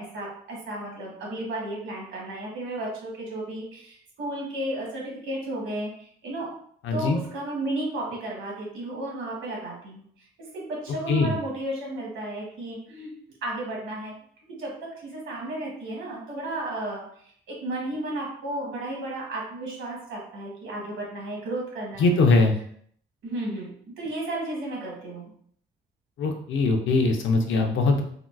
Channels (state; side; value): normal; both; correlation 0.52